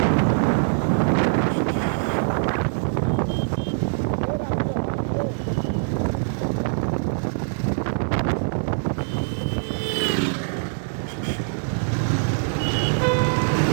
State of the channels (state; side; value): silent; left; digital silence